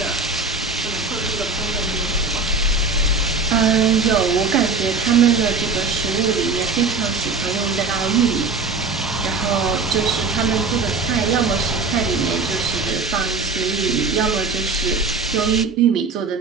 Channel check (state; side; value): quieter; left; 4.3 dB